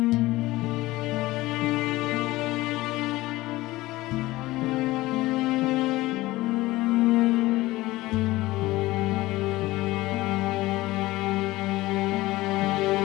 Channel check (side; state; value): right; quieter; 18.6 dB